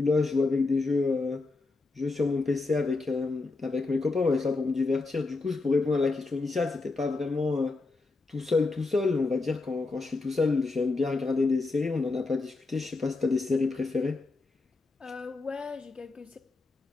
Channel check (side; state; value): right; quieter; 3.6 dB